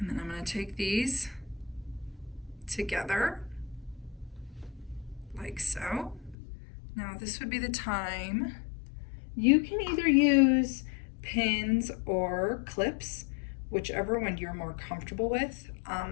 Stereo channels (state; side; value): drops out; right; at 6.4 s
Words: then I'm gonna take these together, like so. Now this would be the time. You can either use pins or clips, whichever one you're more comfortable with.